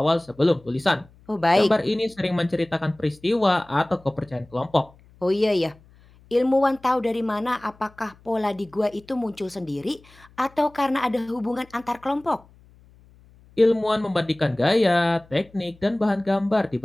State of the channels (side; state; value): left; noise; hum, 27 dB below the sound